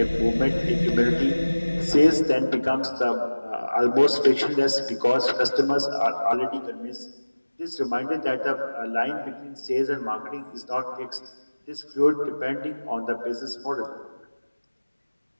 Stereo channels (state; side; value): inverted; both; correlation -1.00